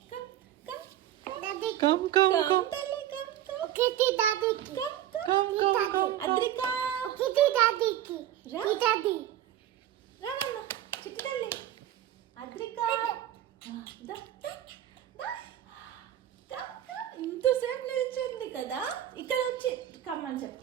కమ్ కమ్ దాది కమ్ కమ్ కమ్ తల్లి కమ్ కమ్. ఒకటి దాదికి కమ్ అద్రిక ఒకటి దాదికి రా. దాది రా నాన్న చిట్టి తల్లి. అద్రిక ఇంతసేపు నిల్చుంది కదా, ఇక్కడ వచ్చి కమ్మని చెప్పు.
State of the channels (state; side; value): quieter; left; 12.1 dB